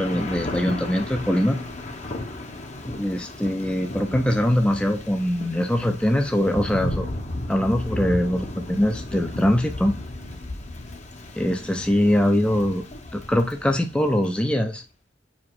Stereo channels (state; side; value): normal; both; correlation 0.91